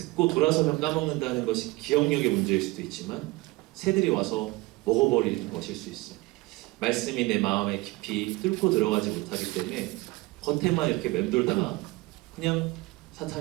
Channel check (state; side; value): quieter; left; 22.1 dB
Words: 돌아서면 까먹는다는 것이 기억력의 문제일 수도 있지만 새들이 와서 먹어버리는 것일 수 있어요. 말씀이 내 마음에 깊이 뚫고 들어가지 못하기 때문에 겉에만 이렇게 맴돌다가 그냥